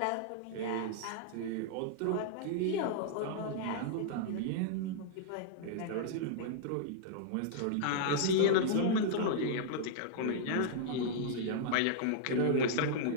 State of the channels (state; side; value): different; both; correlation -0.01